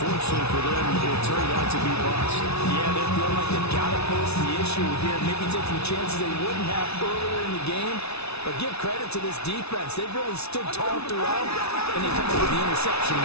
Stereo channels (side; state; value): right; late; 0.80 ms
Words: for them, it turned out to be bust. Yeah, they feel like they've got to post the issue here, maybe taking chances they wouldn't have earlier in the game. But give credit to this defense. They've really stood tall throughout, and they come up with the interception in